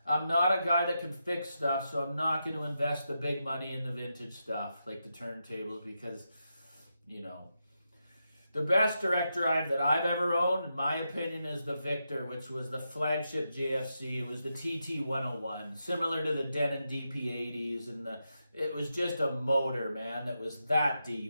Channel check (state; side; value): inverted; both; correlation -0.86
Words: I'm not a guy that can fix stuff, so I'm not going to invest the big money in the vintage stuff like the turntables because, the best direct drive that I've ever owned, in my opinion, is the Victor, which was the flagship JFC. It was the TT101, similar to the Denon DP80s, and it was just a motor, man, that was that